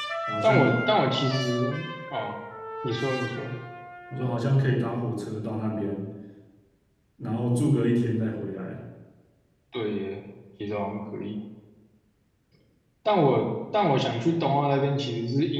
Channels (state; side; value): identical; both; correlation 1.00